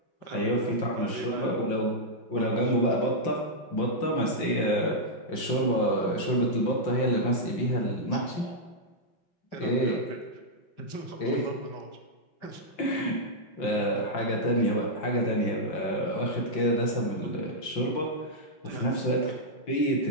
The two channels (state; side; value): late; right; 5.7 ms